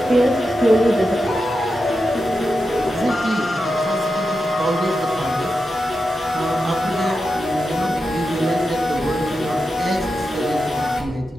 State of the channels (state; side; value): normal; both; correlation 0.89